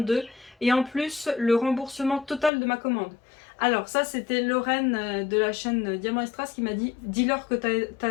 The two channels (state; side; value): drops out; right; at 2.5 s